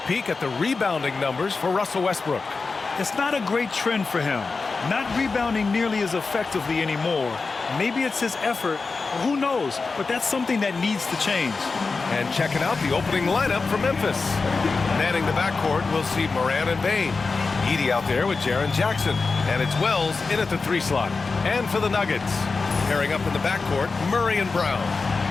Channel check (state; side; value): quieter; right; 4.2 dB